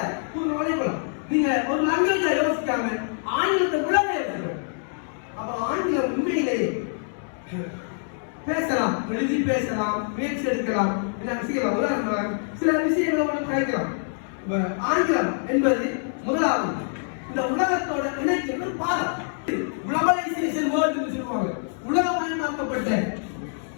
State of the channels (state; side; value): silent; right; 62 dB below the other